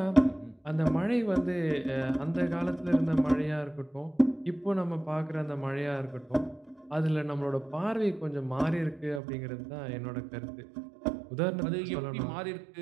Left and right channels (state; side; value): drops out; left; at 9.2 s